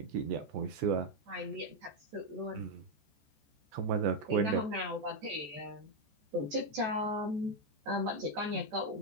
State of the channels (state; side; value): late; left; 14 ms